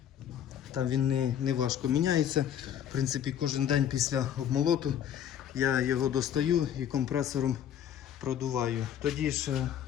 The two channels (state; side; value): quieter; right; 9.8 dB